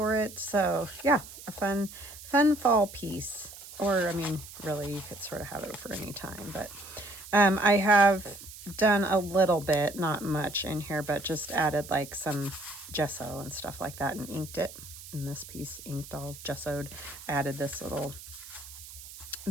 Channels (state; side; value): noise; right; hiss, 15 dB below the sound